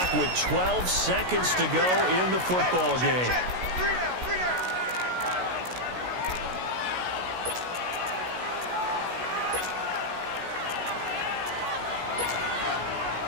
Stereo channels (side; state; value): left; late; 16 ms